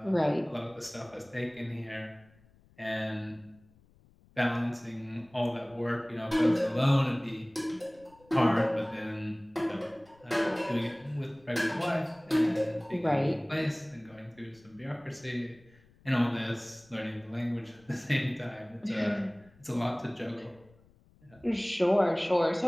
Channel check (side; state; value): left; noise; rumble, 29 dB below the sound